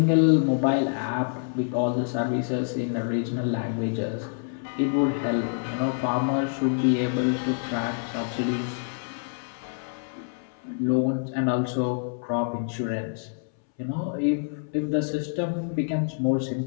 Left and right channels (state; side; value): silent; right; 60 dB below the other